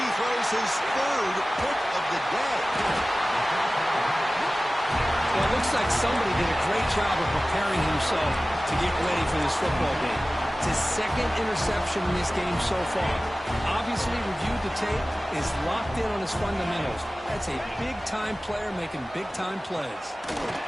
his 3rd pick of the day. Well, it looks like somebody did a great job of preparing himself to get ready for this football game. It's his 2nd interception in this game so far. Obviously reviewed the tape, is locked in on his fundamentals. That's a big-time player making big-time plays.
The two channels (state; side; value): normal; both; correlation 0.97